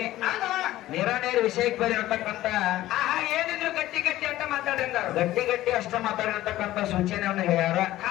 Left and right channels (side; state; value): right; quieter; 15.2 dB